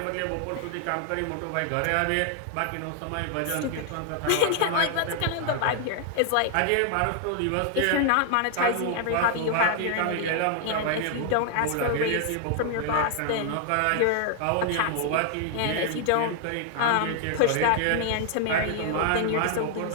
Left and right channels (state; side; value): different; both; correlation 0.00